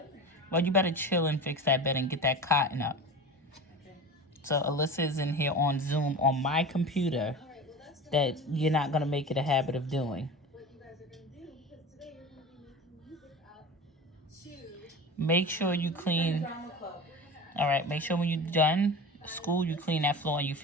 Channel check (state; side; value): normal; both; correlation 0.31